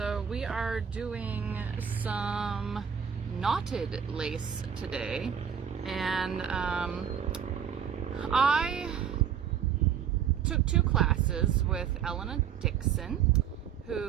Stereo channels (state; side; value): quieter; left; 8.3 dB